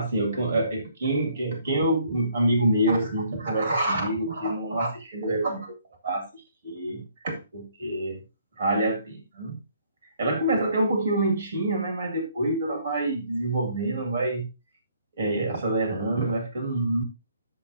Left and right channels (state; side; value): inverted; both; correlation -0.64